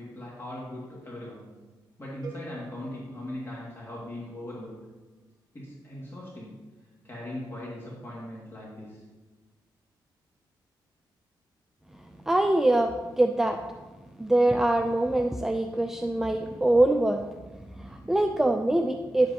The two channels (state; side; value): normal; both; correlation 0.95